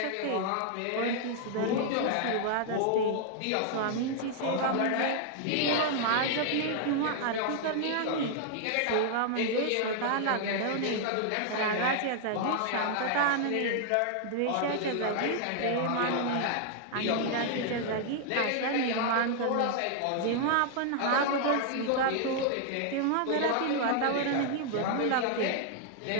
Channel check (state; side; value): different; both; correlation 0.00